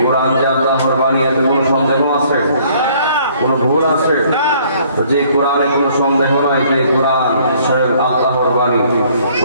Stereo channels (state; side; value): inverted; both; correlation -0.60